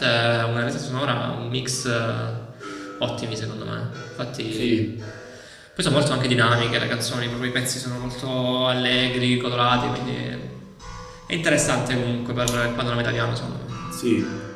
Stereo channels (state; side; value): identical; both; correlation 1.00